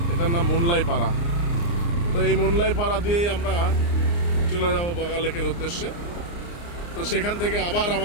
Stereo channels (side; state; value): right; late; 29 ms